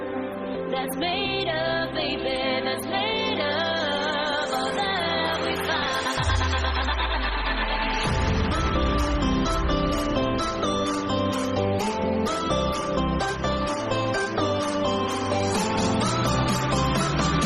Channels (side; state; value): both; identical; correlation 1.00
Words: that's made of, baby, that's made of all that we find.